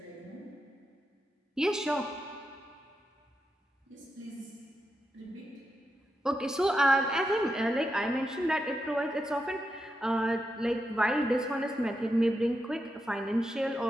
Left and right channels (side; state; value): both; normal; correlation 0.86